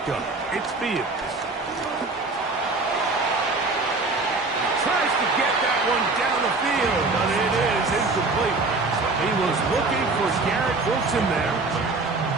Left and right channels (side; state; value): left; quieter; 3.6 dB